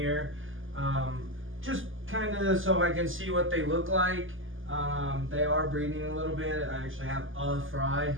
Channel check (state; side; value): late; left; 0.58 ms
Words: just kind of so I can see what they look like. They are breeding a little bit. I actually have a fry.